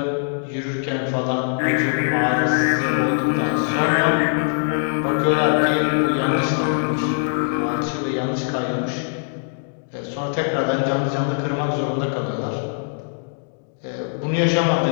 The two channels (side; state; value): right; silent; digital silence